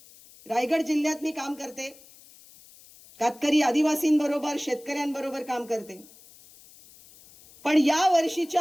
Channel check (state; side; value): noise; left; hiss, 24 dB below the sound